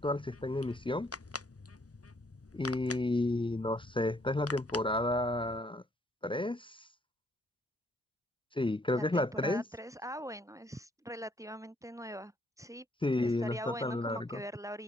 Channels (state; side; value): normal; both; correlation 0.67